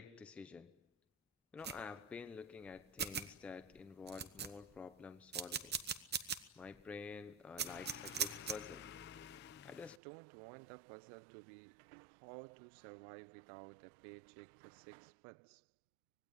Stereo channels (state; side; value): drops out; left; at 10.0 s